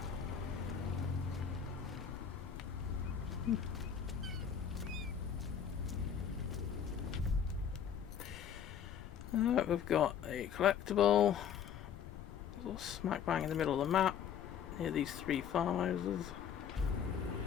We've got a collectible. Smack bang in the middle of the map, near these 3 farmhouses.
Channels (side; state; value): right; quieter; 8.1 dB